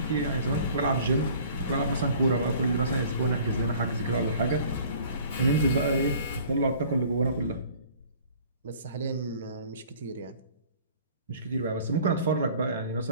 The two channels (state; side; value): inverted; both; correlation -0.51